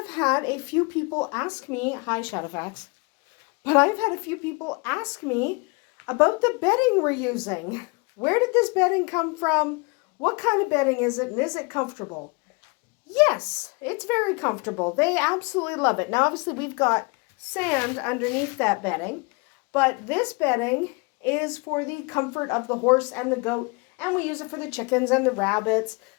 had a few people ask me, hi Shadowfax, but I've had a few people ask me about the bedding we're using. Where did this bedding come from? What kind of bedding is it, and is it comfortable? Yes, it's very comfortable. They absolutely love it. Now, obviously, we've got sand underneath that bedding, but this bedding is for the comfort of the horse and the goat, and we use it for the chickens and the rabbits,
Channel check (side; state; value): right; quieter; 29.6 dB